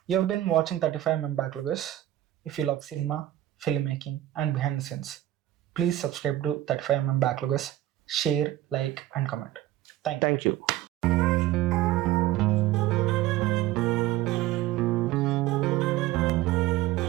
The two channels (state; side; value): quieter; left; 14.5 dB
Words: You have been watching 35mm Backloggers. If you love cinema, filmmaking and behind the scenes, please subscribe to 35mm Backloggers, share, like and comment. Thank you.